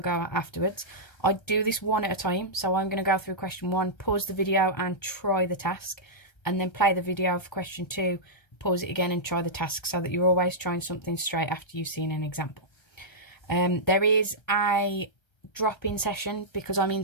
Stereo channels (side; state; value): right; late; 1.3 ms